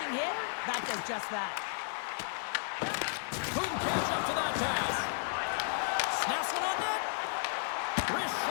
hit, that does just that. Couldn't catch up to that pass. Snaps one on net. Wrist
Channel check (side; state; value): right; silent; digital silence